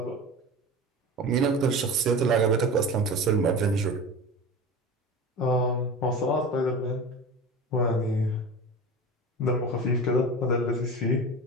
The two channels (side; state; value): both; normal; correlation 0.31